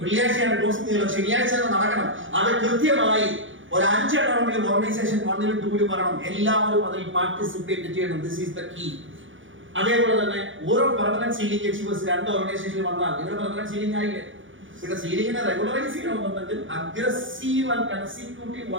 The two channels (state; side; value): late; left; 0.56 ms